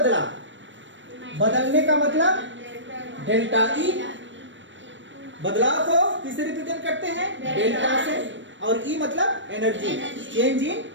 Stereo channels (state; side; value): late; left; 0.54 ms